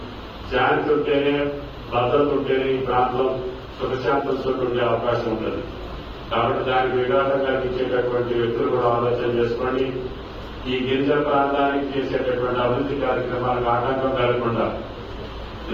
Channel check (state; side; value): identical; both; correlation 1.00